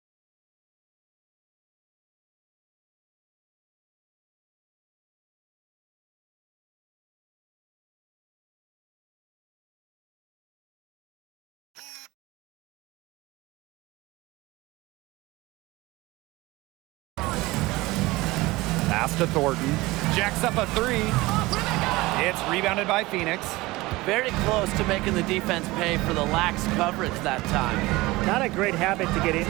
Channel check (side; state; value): left; quieter; 20.5 dB